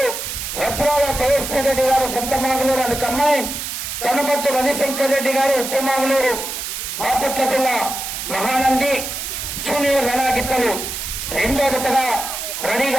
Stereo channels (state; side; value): noise; right; hiss, 5 dB below the sound